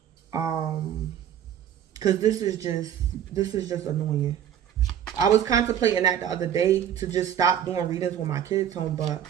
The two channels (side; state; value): left; quieter; 9.8 dB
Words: Cause this is just annoying. I was contemplating that the other day to just stop doing readings when my kids home, but